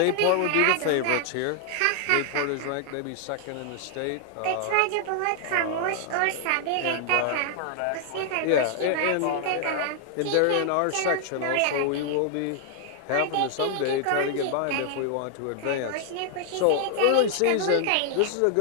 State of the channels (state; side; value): different; both; correlation 0.00